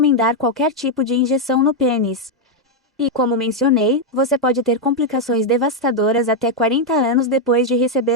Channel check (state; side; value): normal; both; correlation 0.01